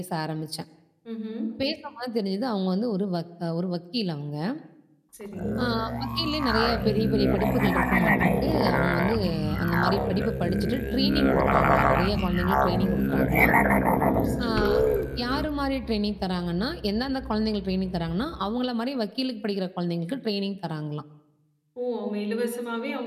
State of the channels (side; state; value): both; identical; correlation 1.00